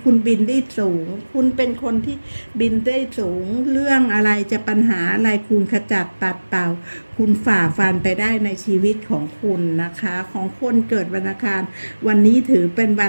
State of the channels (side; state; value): both; inverted; correlation -1.00